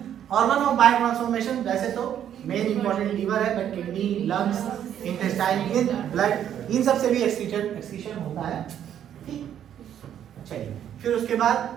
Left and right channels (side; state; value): left; quieter; 10.0 dB